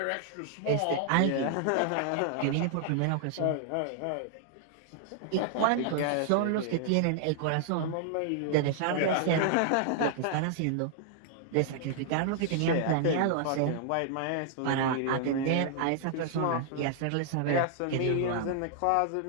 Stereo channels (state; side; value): different; both; correlation -0.01